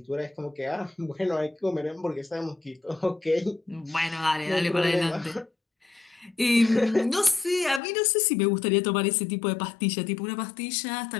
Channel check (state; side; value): drops out; right; at 7.8 s